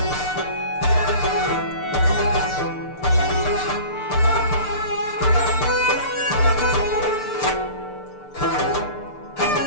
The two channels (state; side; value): late; right; 6.7 ms